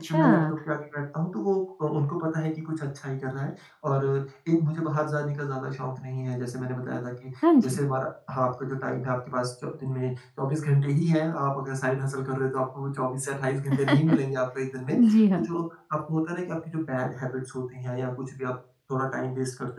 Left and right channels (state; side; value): identical; both; correlation 1.00